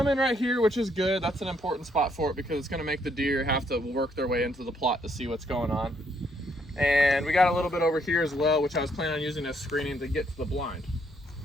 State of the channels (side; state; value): both; normal; correlation 0.71